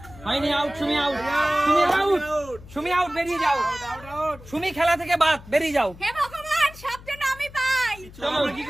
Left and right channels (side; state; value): left; noise; hum, 19 dB below the sound